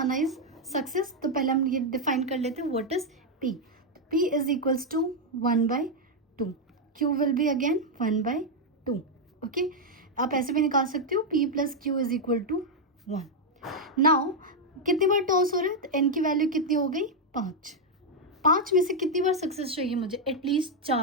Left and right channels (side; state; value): both; normal; correlation 0.00